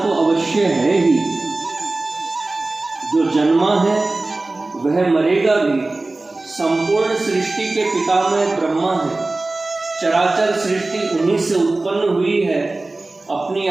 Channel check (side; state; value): left; quieter; 3.1 dB